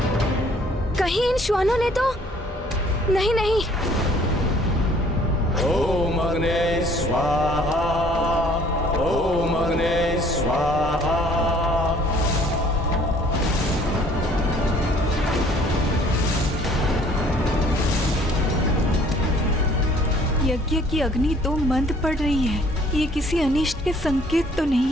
कहीं इन श्वानों ने तो नहीं? नहीं, ओम अग्ने स्वाहा, ओम अग्ने स्वाहा। यज्ञ की अग्नि तो मंद पड़ रही है। ये किसी अनिष्ट के संकेत तो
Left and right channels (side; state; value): both; normal; correlation 0.57